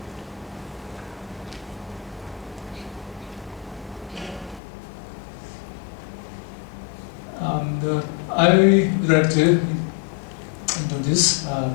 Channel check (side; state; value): right; drops out; at 4.6 s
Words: And I would like to introduce